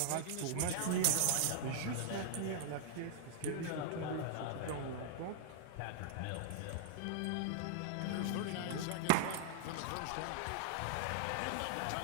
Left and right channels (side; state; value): both; different; correlation -0.01